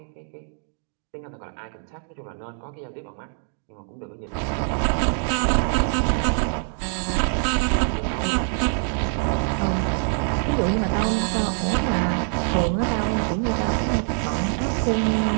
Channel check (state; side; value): silent; left; 61 dB below the other